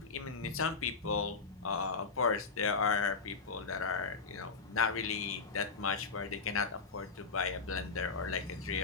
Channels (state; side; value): quieter; right; 4.7 dB